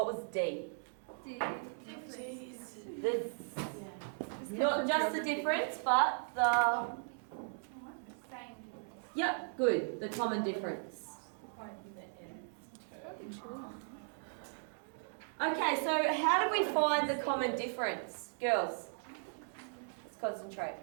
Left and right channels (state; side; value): silent; left; 53 dB below the other